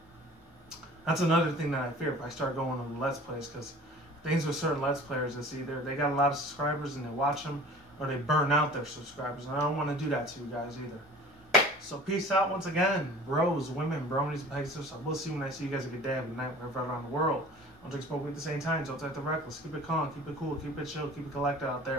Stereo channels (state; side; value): normal; both; correlation 0.44